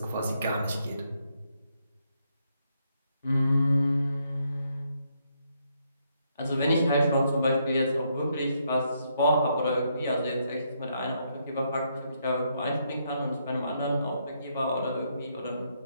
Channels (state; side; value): inverted; both; correlation -0.76